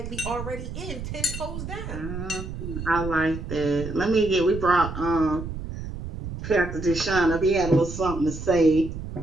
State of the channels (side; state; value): right; noise; rumble, 8 dB below the sound